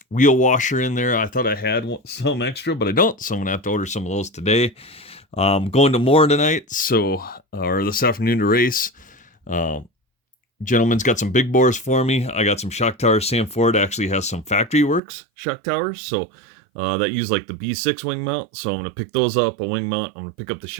wheel washer in there. I thought I had some extra, but I don't. So I'm going to have to order some of those today. Going to Moore tonight, or this afternoon to race. Gentleman's got some big bores for me. I got some shock towers. Sam Ford actually has some factory works shock towers, so that use like the B6 wing mount. So I'm going to pick those up, a wing mount. I'm going to pick up the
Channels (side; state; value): left; drops out; at 15.0 s